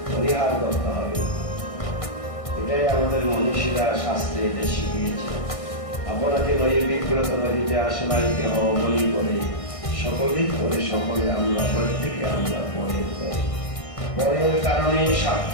পরিহার করতে হবে। এটাই আমাদের মনীষীরা শাস্ত্রে এটা শিখিয়েছে। আপনাকে নয় বিগ্রত নদীতে আসলাইতে হওয়া বলি বলে সকলেই করে, সকলে আমরা প্রত্যেকে আমরা পরের করি। পরের কারণে স্বার্থ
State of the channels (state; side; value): late; right; 1.6 ms